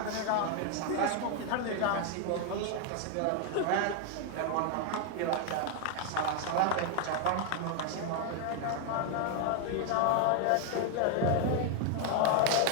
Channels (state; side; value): different; both; correlation 0.00